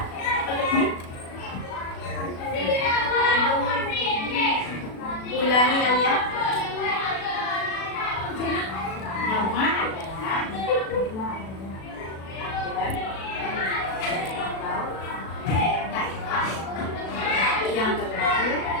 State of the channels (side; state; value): right; late; 36 ms